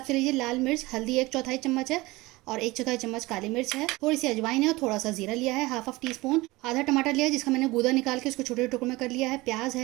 से लीजिए। लाल मिर्च, हल्दी 1/4 चम्मच है और 1/4 चम्मच काली मिर्च है। थोड़ी सी अजवाइन है और थोड़ा सा जीरा लिया है, हाफ टी स्पून। आधा टमाटर लिया है जिसका मैंने गूदा निकाल के उसको छोटे टुकड़ों में कर लिया है। प्याज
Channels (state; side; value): quieter; left; 21.1 dB